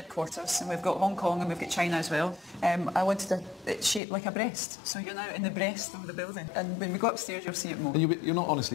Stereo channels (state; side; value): drops out; right; at 4.0 s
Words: and we've got Hong Kong and we've got China as well. I wanted it shaped like a breast, so you're now in the breast of the building. And when we go upstairs, you'll see it more. And you're